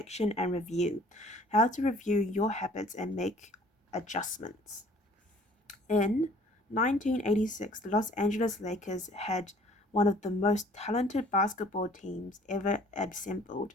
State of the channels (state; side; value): normal; both; correlation 0.54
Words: and review. How to review your habits and make adjustments. In 1986, the Los Angeles Lakers had one of the most talented basketball teams ever assembled,